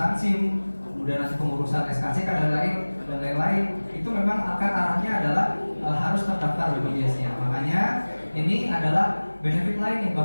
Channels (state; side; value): inverted; both; correlation -1.00